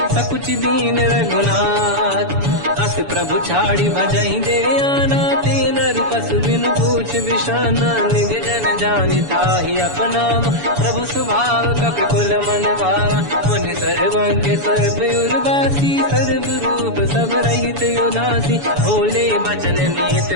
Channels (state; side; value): late; left; 7.0 ms